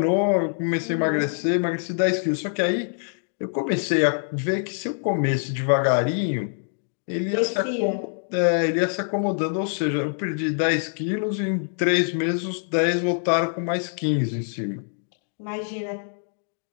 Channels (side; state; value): right; silent; digital silence